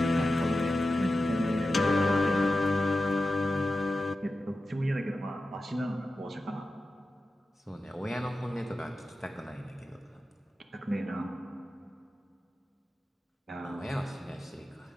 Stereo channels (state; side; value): normal; both; correlation 0.93